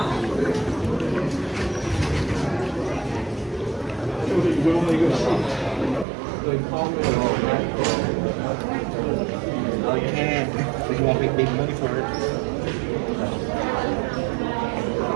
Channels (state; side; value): drops out; left; at 6.1 s